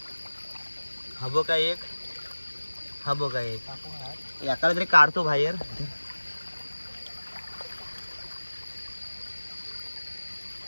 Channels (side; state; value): both; inverted; correlation -1.00